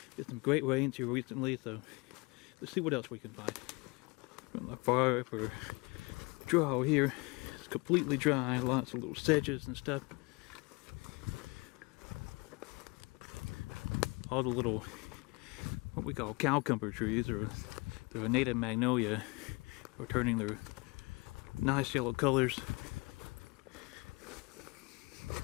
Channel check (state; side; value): quieter; right; 27.4 dB